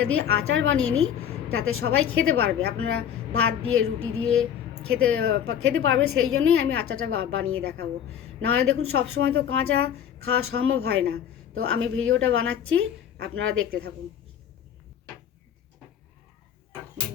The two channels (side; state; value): right; quieter; 9.2 dB